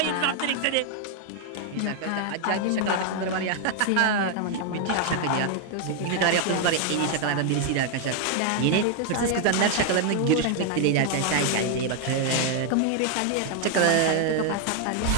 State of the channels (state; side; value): different; both; correlation 0.00